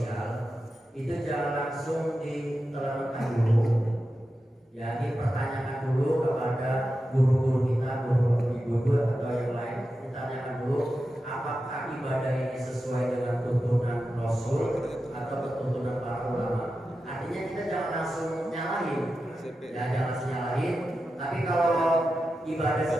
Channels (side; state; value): both; normal; correlation 0.91